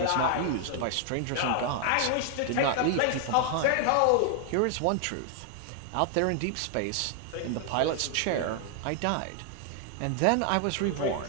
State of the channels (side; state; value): both; different; correlation 0.00